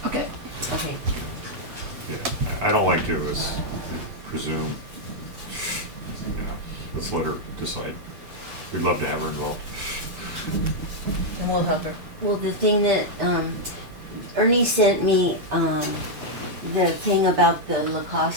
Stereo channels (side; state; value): left; late; 7.9 ms